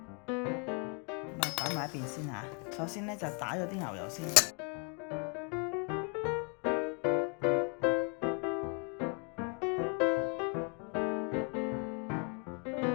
啊擺埋一邊先嚇。首先咧就打咗啲牛油先，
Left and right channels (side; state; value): right; quieter; 36.6 dB